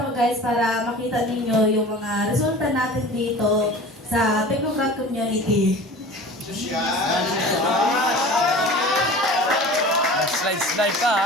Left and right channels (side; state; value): both; normal; correlation 0.39